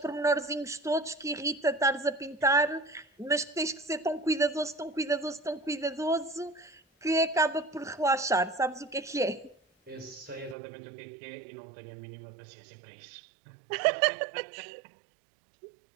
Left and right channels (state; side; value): drops out; left; at 10.6 s